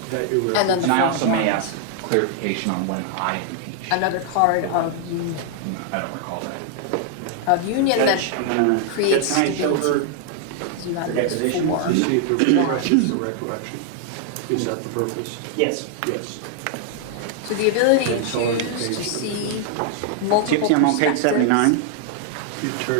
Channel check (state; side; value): different; both; correlation 0.00